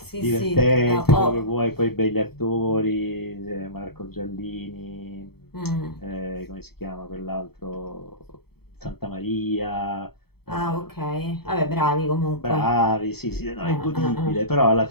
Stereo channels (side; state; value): right; late; 0.96 ms